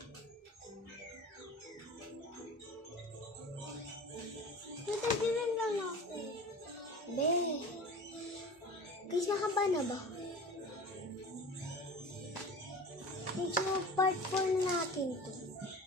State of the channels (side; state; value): both; normal; correlation 0.37